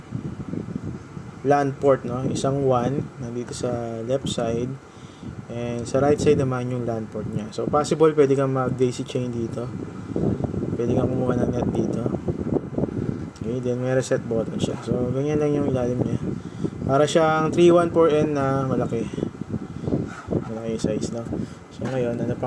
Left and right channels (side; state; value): both; identical; correlation 1.00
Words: LAN port, no? Isang WAN nandito sa left side, and sa right side naman yung LAN port niya. So possible pwede kang mag daisy chain dito, pwede kang kumuha ng net dito. Okay, then may reset button siya. So ganyan lang yung ilalim niya. Para siyang 314N na malaki size, no? So ngayon, ano